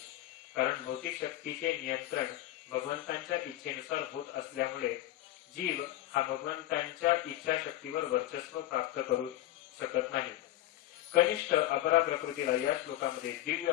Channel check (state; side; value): quieter; right; 14.7 dB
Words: कारण भौतिक शक्तीचे नियंत्रण भगवंतांच्या इच्छेनुसार होत असल्यामुळे जीव हा भगवंतांच्या इच्छाशक्तीवर वर्चस्व प्राप्त करू शकत नाही. कनिष्ठ अपरा प्रकृतीला या श्लोकामध्ये दिव्य